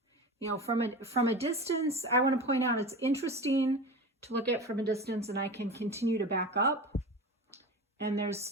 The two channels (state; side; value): normal; both; correlation 0.30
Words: You know, from a distance, I want to point out it's interesting to look at from a distance, and I can continue to back up. And there's